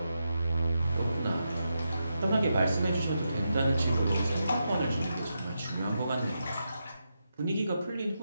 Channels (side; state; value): both; inverted; correlation -0.86